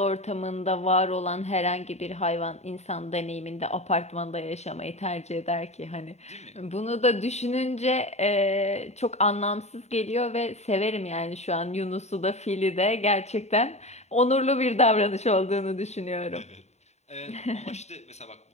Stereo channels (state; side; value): late; right; 0.32 ms